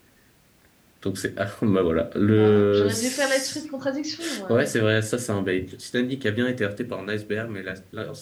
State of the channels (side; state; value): both; identical; correlation 1.00